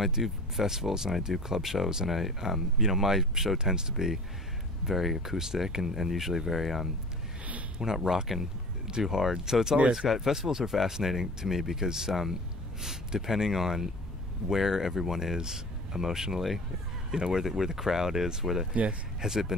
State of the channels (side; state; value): both; normal; correlation 0.41